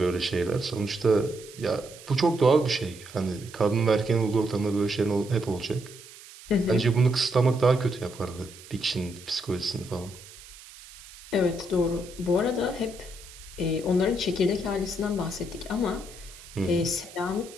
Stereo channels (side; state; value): right; noise; hiss, 18 dB below the sound